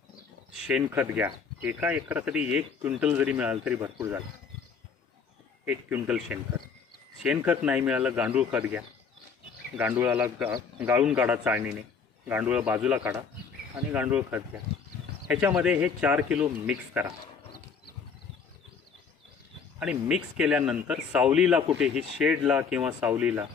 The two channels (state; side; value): quieter; right; 5.8 dB